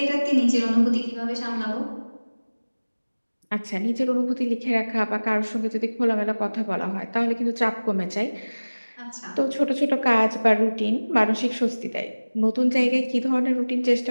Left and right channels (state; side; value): inverted; both; correlation -1.00